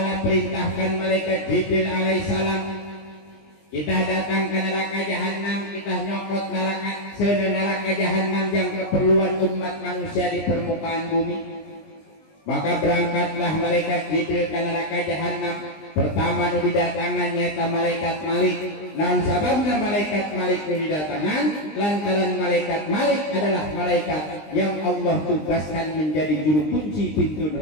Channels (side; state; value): right; late; 20 ms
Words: perintahkan malaikat Jibril alaihissalam kita datang ke neraka jahannam kita nyokot neraka senek neraka jahannam yang keperluan umat manusia di permukaan bumi. Maka berangkatlah malaikat Jibril ke neraka jahanam. Pertama nu didatangan nyata malaikat Malik. Naon sababna malaikat Malik nu didatangan? Lantaran malaikat Malik adalah malaikat yang Allah tugaskan menjadi juru kunci pintu